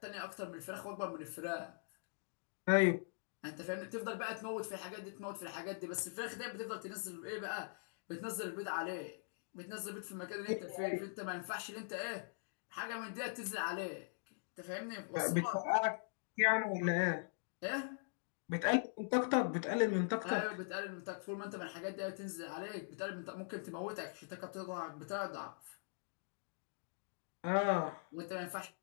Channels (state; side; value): silent; right; digital silence